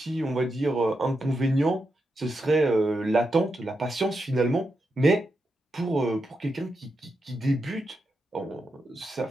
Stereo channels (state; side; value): normal; both; correlation 0.86